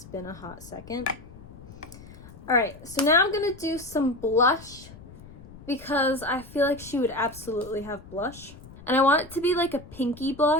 been a hot second. Alright, so now I'm going to do some blush because I feel like she would absolutely have blush. And I want it to be like a pinky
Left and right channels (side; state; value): left; noise; rumble, 18 dB below the sound